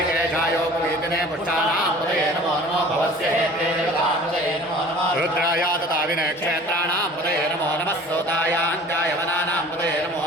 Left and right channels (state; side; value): normal; both; correlation 0.45